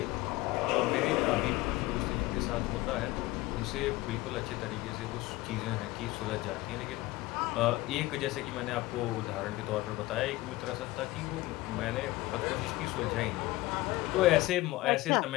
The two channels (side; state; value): right; quieter; 18.8 dB